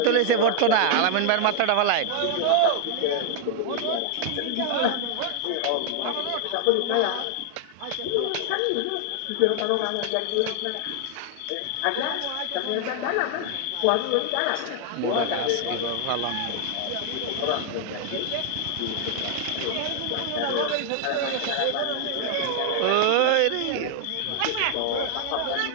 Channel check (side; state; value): both; different; correlation 0.00